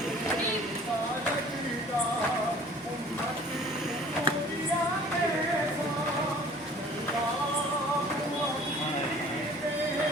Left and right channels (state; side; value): normal; both; correlation 0.50